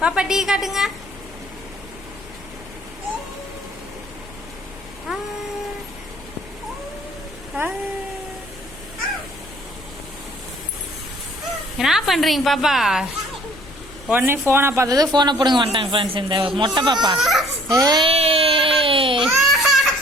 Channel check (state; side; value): noise; left; rumble, 20 dB below the sound